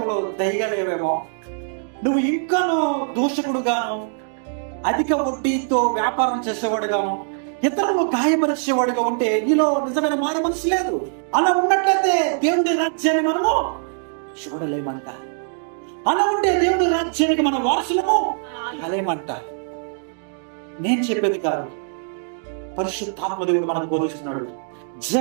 దయగా లేవేమో. నువ్వు ఇంకాను దూషకుడుగాను, అధిక వడ్డీతో వ్యాపారం చేసేవాడుగాను, ఇతరులు గాయపరిచేవాడుగా ఉంటే నీలో నిజమైన మారు మనసు లేదు. అలా ఉన్నట్లయితే దేవుడి రాజ్యాన్ని మనము చూడలేమంట. అలా ఉంటే దేవుడి రాజ్యానికి మన వారసులము కాలేమంట. నేను చెప్పేది కాదు, పరిశుద్ధాత్మ దేవుడు మనకు బోధిస్తున్నాడు.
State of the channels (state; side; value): silent; left; digital silence